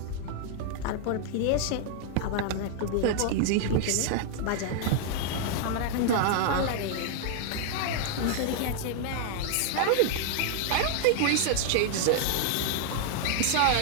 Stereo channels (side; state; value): both; different; correlation 0.00